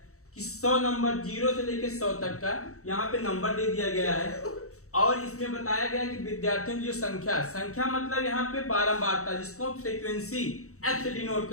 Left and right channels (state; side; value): late; right; 0.64 ms